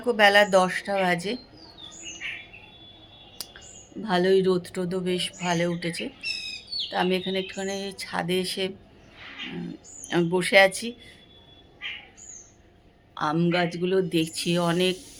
বেলা 10টা বাজে। ভালোই রোদ টোদও বেশ ভালো উঠেছে। তো আমি এখানে একটুখানি ছাদে এসে আমি বসে আছি। আম গাছগুলো দেখছি অনেক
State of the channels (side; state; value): both; identical; correlation 1.00